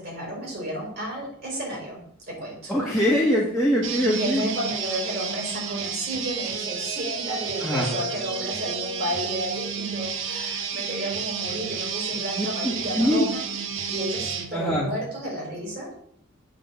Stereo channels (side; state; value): both; normal; correlation 0.35